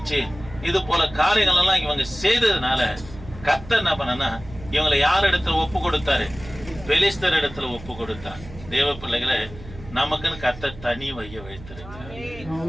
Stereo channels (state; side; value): noise; right; hum, 16 dB below the sound